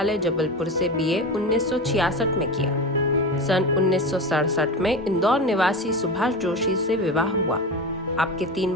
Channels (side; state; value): both; normal; correlation 0.24